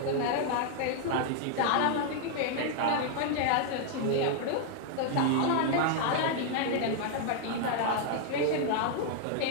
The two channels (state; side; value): different; both; correlation 0.00